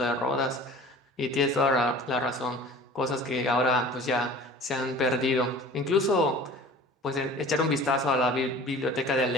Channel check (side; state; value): both; normal; correlation 0.43